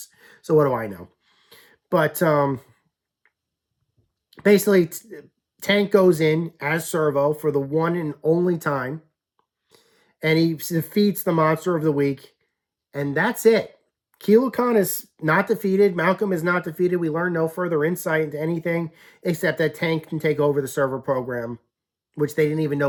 So what do I know? But basically, Tank goes in as Servo for the one and only time, and he defeats the monster of the week, and that's it. Kilo Khan is not defeated. Malcolm is not defeated. We learn no further insight into anything except that Tank can take over the server program, which they didn't even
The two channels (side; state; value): both; identical; correlation 1.00